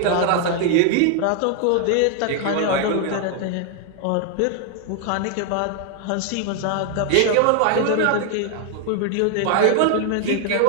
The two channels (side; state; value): both; different; correlation 0.00